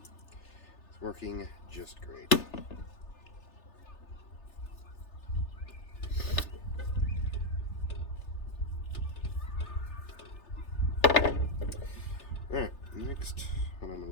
working just great. Alright, next, what I'm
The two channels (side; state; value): right; late; 3.4 ms